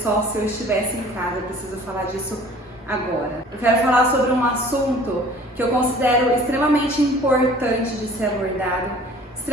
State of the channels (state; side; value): normal; both; correlation 0.49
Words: se eu estivesse em casa. Eu preciso falar disso agora. Eu quero falar sobre um assunto que eu considero extremamente importante de ser abordado,